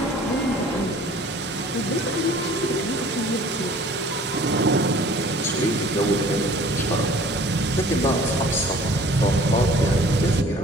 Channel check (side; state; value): both; normal; correlation 0.50